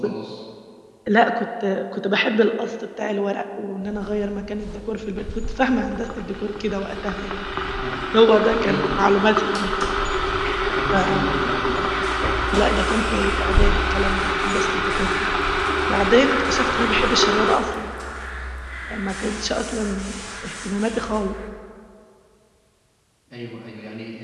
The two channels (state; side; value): identical; both; correlation 1.00